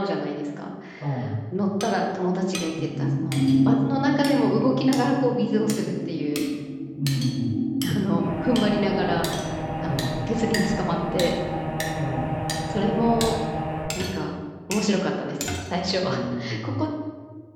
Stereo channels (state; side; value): identical; both; correlation 1.00